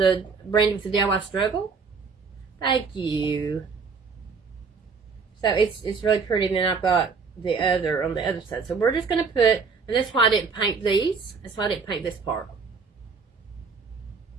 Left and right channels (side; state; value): left; quieter; 5.1 dB